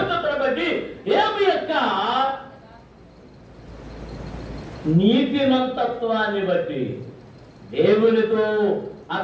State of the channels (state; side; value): identical; both; correlation 1.00